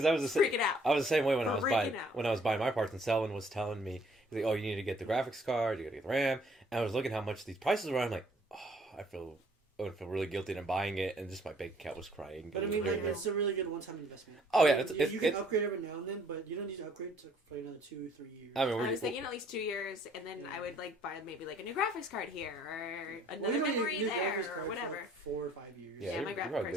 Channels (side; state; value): both; normal; correlation 0.61